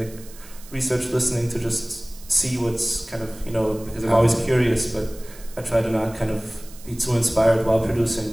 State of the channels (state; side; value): noise; right; hiss, 20 dB below the sound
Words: research listening to just see what's kind of, because I'm always curious, but I try to not kind of be too inspired while producing.